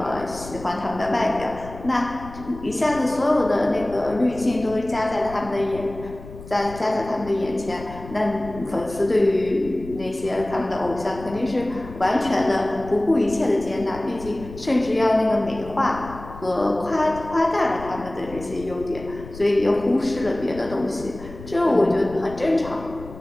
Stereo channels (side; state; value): left; noise; rumble, 15 dB below the sound